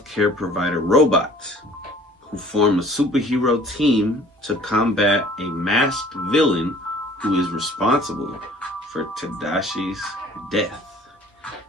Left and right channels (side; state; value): both; normal; correlation 0.52